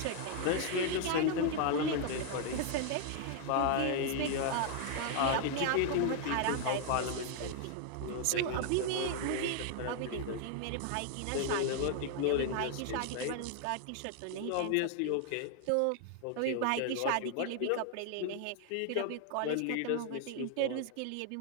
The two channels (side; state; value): both; different; correlation 0.00